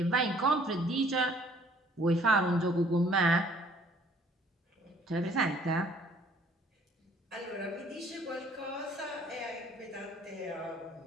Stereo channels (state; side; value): normal; both; correlation 0.58